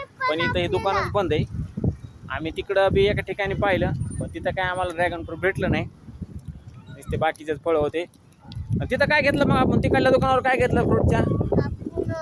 पण इथं हे दुकानच बंद आहे. आम्ही तिकडं बी एका ठिकाणी पाहिलं, पण तिथं काय आम्हाला ड्रॅगन फ्रूट भेटलं नाही. नुसते बाकीचेच फळं होते. तिथं काय घेतलं मग आपण? तिकडल्या दुकानावर काय घेतलं फ्रूटच्या?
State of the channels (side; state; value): both; identical; correlation 1.00